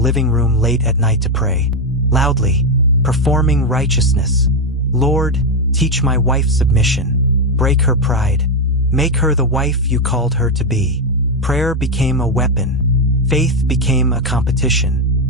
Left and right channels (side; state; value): both; normal; correlation 0.07